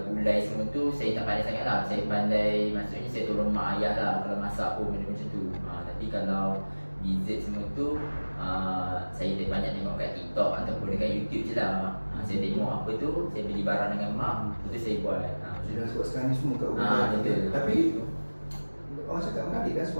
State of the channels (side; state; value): both; inverted; correlation -1.00